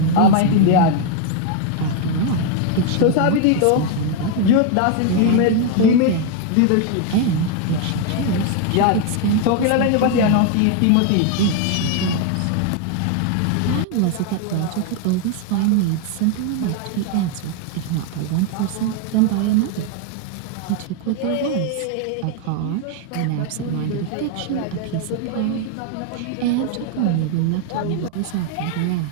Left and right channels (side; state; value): both; different; correlation 0.01